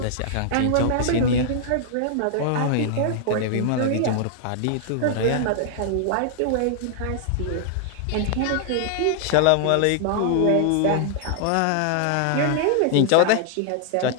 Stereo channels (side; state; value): both; different; correlation -0.01